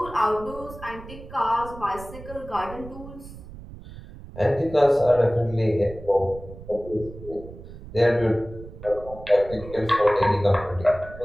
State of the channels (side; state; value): right; noise; rumble, 15 dB below the sound